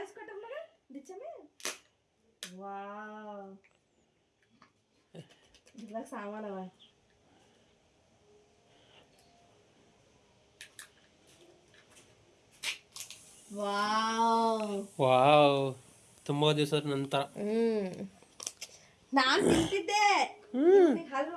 ಕೊಟ್ಟಾರ ಮಗ ದಿಚ್ಚಮೆ. ವಾವ್ ಇದ್ರಾಗ ಸಾಮಾನವ. ವಾವ್ ತುಂಬಾ ದಿವಸದ ನಂತರ. ನಾನ್ ತಿಂತಿದ್ದೆ, ಹಲ್ಲು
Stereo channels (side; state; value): both; identical; correlation 1.00